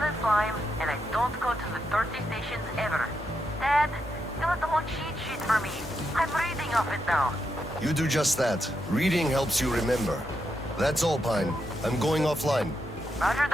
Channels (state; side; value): normal; both; correlation 0.83